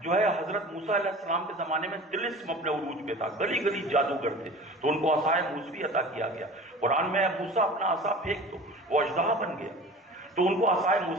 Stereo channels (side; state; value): both; normal; correlation 0.39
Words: جو ہے حضرت موسیٰ علیہ السلام کے زمانے میں طلسم اپنے عروج پہ تھا، گلی گلی جادوگر تھے، تو ان کو عصائے موسوی عطا کیا گیا۔ قرآن میں موسیٰ اپنا عصا پھینک تو وہ اژدہا بن گیا، تو ان کو عصائے